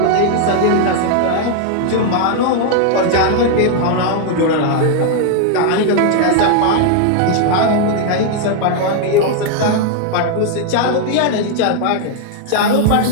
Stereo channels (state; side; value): different; both; correlation 0.00